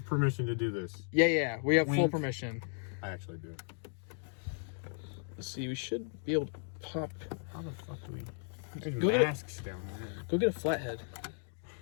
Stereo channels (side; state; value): right; silent; 54 dB below the other